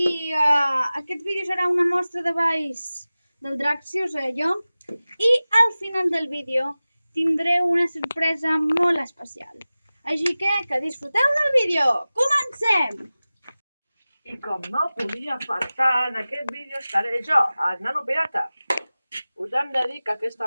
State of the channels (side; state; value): both; inverted; correlation -0.97